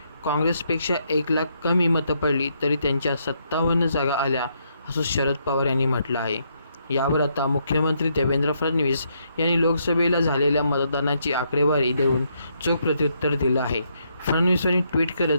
काँग्रेसपेक्षा 1 लाख कमी मतं पडली तरी त्यांच्या 57 जागा आल्या असं शरद पवार यांनी म्हटलं आहे. यावर आता मुख्यमंत्री देवेंद्र फडणवीस यांनी लोकसभेला झालेल्या मतदानाची आकडेवारी देऊन चोख प्रत्युत्तर दिलं आहे. फडणवीस यांनी ट्विट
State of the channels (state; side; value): inverted; both; correlation -0.75